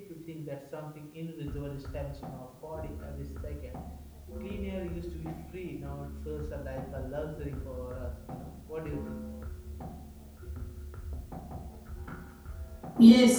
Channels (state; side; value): identical; both; correlation 1.00